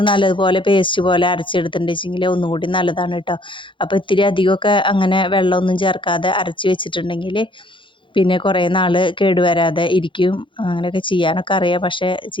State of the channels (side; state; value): right; late; 0.24 ms